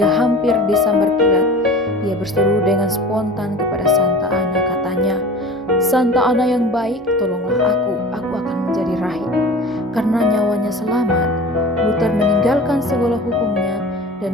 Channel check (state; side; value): normal; both; correlation 0.39